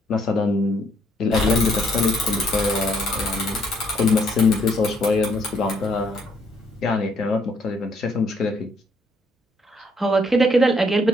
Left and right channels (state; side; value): normal; both; correlation 0.69